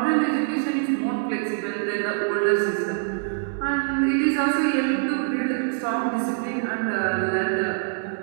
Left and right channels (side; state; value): left; silent; digital silence